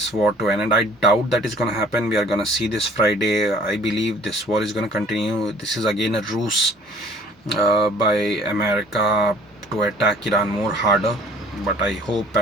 war to an end. I doubt that is going to happen. We are going to see this Friday. I believe this war is going to continue. This is again a ruse by America to attack Iran more harder. But I hope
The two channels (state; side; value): normal; both; correlation 0.54